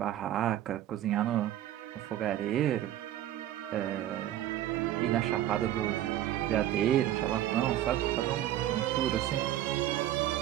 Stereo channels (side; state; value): left; quieter; 12.8 dB